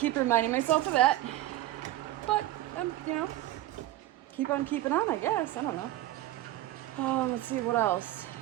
reminding myself of that. But, you know, keep on keeping on, I guess. I don't know. Let's see, what else?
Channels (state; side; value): quieter; left; 14.8 dB